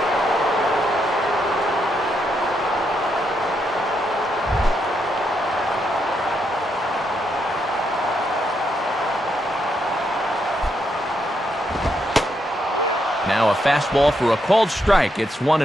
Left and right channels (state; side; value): normal; both; correlation 0.79